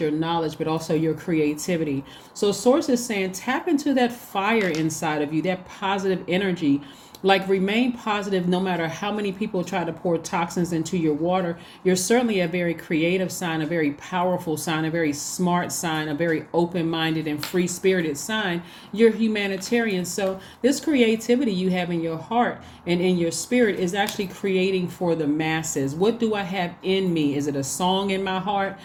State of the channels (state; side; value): identical; both; correlation 1.00